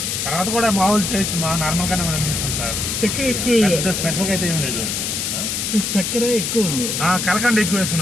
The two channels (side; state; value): left; noise; hiss, 2 dB below the sound